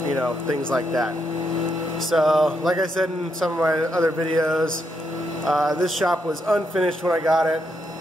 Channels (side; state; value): both; normal; correlation 0.79